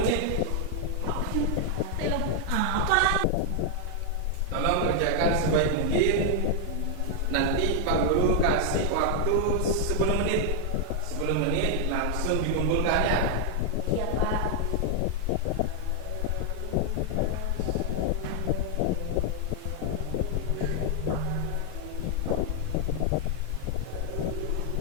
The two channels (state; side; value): different; both; correlation 0.00